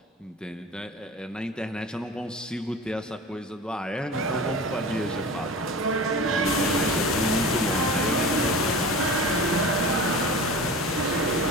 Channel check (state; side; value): normal; both; correlation 0.35